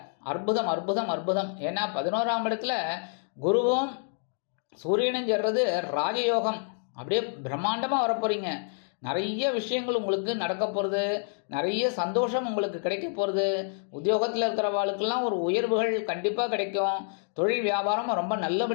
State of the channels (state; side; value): silent; right; 59 dB below the other